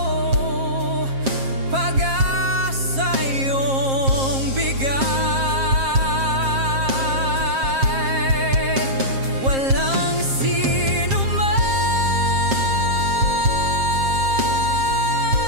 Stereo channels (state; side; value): late; left; 7.5 ms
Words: pag-asa iyong bigay. Walang sino man